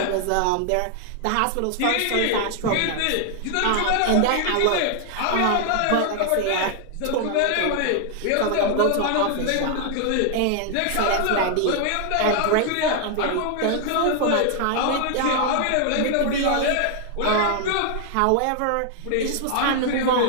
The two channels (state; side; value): different; both; correlation 0.00